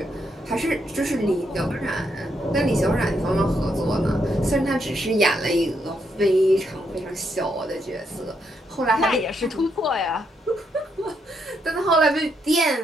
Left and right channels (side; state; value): both; normal; correlation 0.78